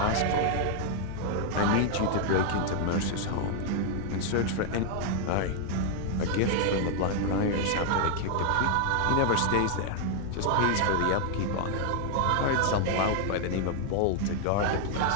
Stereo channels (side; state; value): both; different; correlation 0.00